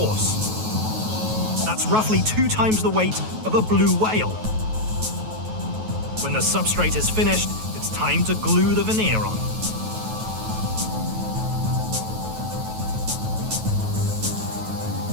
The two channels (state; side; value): late; left; 9.3 ms